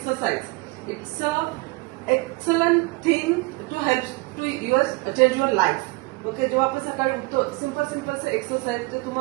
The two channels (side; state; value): left; quieter; 24.0 dB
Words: it's a excellent thing to help to change your life. Okay, जेव्हा आपण सकाळी उठतो, सिंपल एक्सरसाइज जे